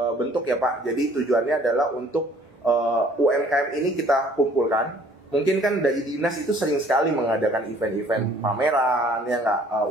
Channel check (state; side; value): normal; both; correlation 0.56